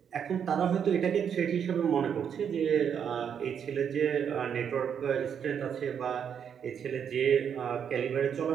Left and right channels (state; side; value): quieter; left; 7.9 dB